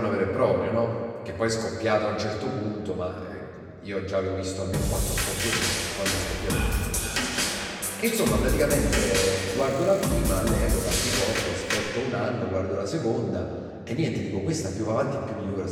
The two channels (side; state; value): both; identical; correlation 1.00